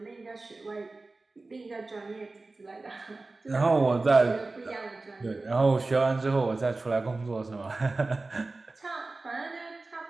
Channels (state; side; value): quieter; left; 3.4 dB